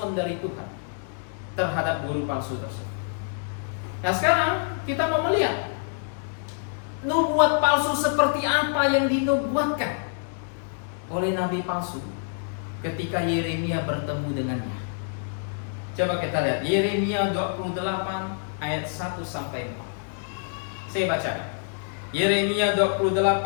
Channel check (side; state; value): right; silent; digital silence